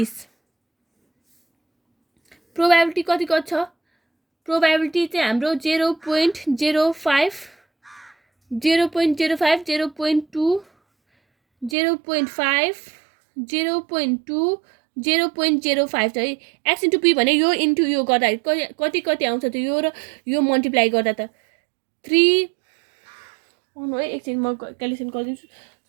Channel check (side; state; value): left; drops out; at 11.8 s